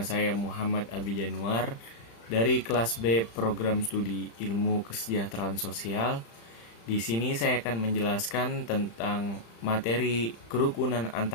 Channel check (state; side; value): late; right; 35 ms